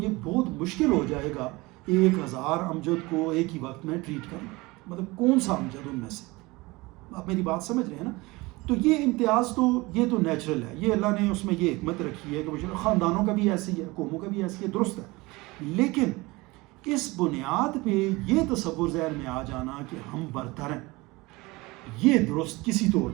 بہت مشکل ہو جائے گا 1000 امجد کو ایک ہی وقت میں ٹریٹ کرنا. مطلب کون سا امجد ان میں سے، آپ میری بات سمجھ رہے ہیں نا. تو یہ امتیاز تو یہ تو نیچرل ہے، یہ اللہ نے اس میں یہ حکمت رکھی ہے کہ خاندانوں کا بھی ایسی ہے، قوموں کا بھی ایسی ہے، درست ہے. لیکن اس بنیاد پہ یہ تصور ذہن میں آ جانا کہ ہم برتر ہیں، یہ درست کسی طور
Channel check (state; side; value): quieter; left; 22.7 dB